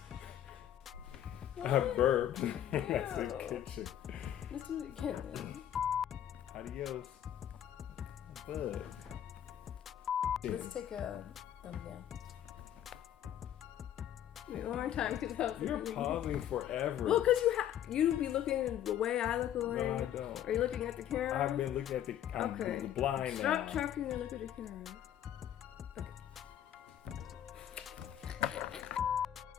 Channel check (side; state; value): right; quieter; 10.8 dB